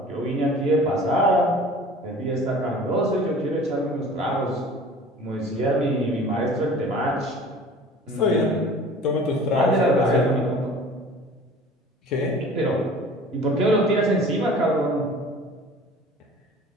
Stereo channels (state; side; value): normal; both; correlation 0.44